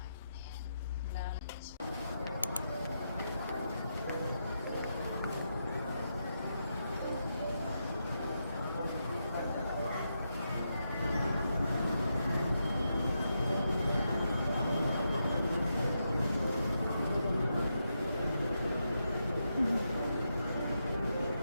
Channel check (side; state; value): both; inverted; correlation -0.84